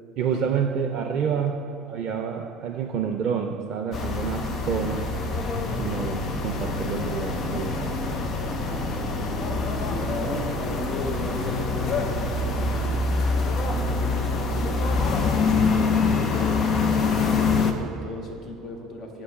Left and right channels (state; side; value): normal; both; correlation 0.49